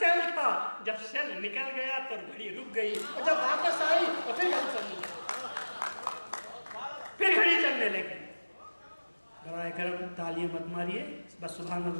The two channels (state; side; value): inverted; both; correlation -1.00